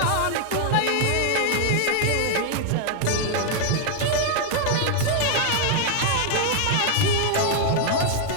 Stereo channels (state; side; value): different; both; correlation 0.00